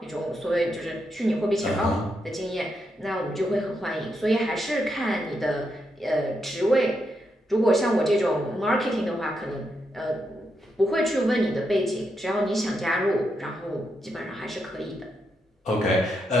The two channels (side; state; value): both; normal; correlation 0.82